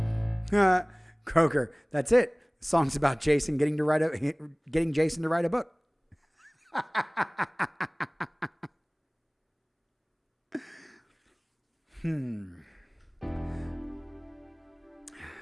Croker, that's it. The song's about Jason getting Jason to write a book.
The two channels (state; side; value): identical; both; correlation 1.00